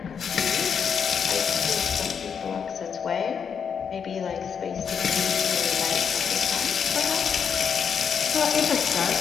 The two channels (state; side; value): quieter; right; 7.0 dB